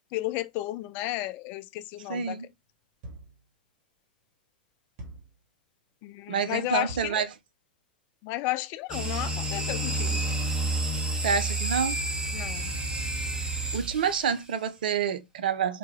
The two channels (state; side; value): normal; both; correlation -0.04